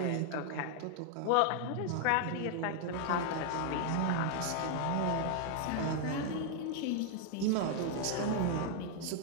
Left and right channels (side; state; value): both; different; correlation 0.00